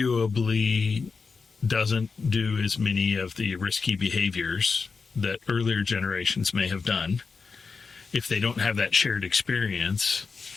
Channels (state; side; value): quieter; right; 4.8 dB